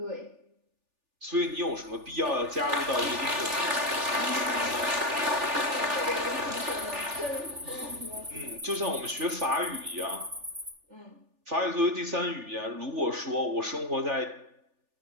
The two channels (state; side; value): late; left; 3.4 ms